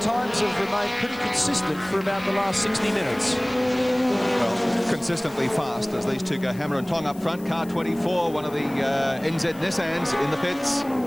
have remained pretty consistent for about the last 60 minutes. Consistently fast as these two go hammer and tong up front. Car 24, one of the NZ Nissans in the pits,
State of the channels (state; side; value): noise; left; hiss, 22 dB below the sound